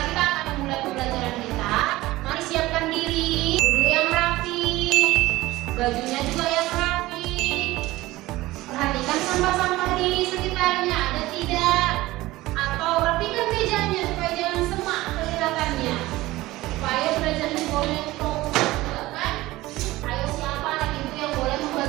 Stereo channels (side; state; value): left; quieter; 18.2 dB